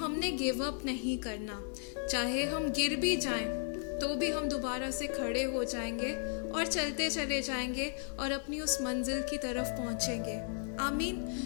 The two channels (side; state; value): right; silent; 55 dB below the other